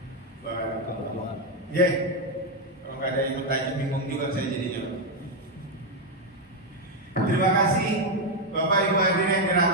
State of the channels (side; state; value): both; normal; correlation 0.03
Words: Barakallah. Ya. Kalau nggak ada yang bertanya, bingung juga saya jadinya. Terima kasih Bapak Ibu hadirin yang